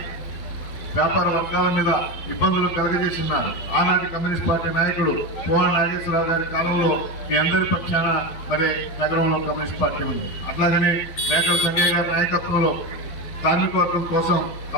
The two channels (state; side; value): late; right; 11 ms